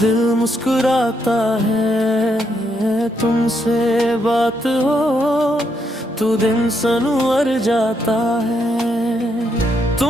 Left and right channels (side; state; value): both; normal; correlation 0.77